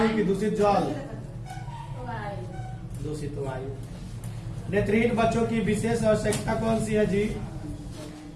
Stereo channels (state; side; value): identical; both; correlation 1.00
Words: की दूषित जल, दूषित वायु। नेत्रहीन बच्चों की विशेष आवश्यकता कौन सी है जी?